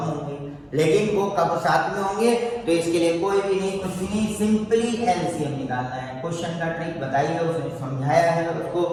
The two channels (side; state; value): both; identical; correlation 1.00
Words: होंगे, लेकिन वो कब साथ में होंगे तो इसके लिए कोई भी नहीं, कुछ भी नहीं, सिंपली एलसीएम निकालना है। क्वेश्चन का ट्रिक बताइए, उसने समझाया है, उसको